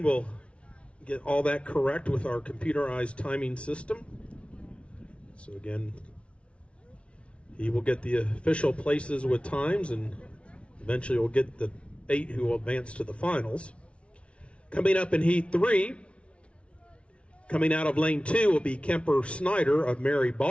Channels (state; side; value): late; right; 0.061 ms